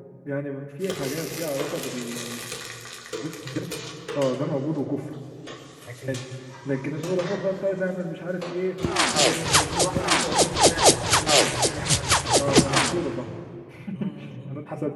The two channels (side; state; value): both; identical; correlation 1.00